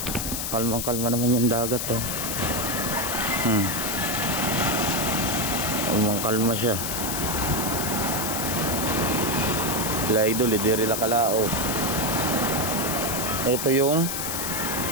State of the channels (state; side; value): noise; left; hiss, 3 dB below the sound